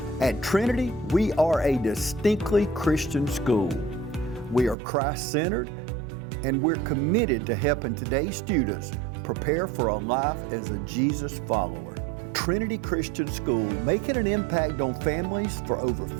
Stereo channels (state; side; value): drops out; left; at 4.8 s